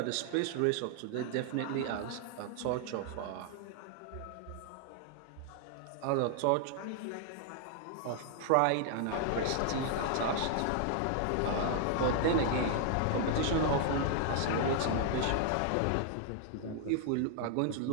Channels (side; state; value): both; different; correlation 0.00